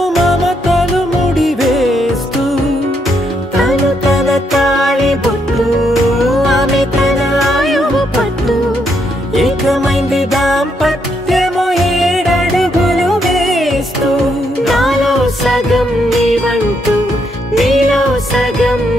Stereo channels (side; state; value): both; normal; correlation 0.76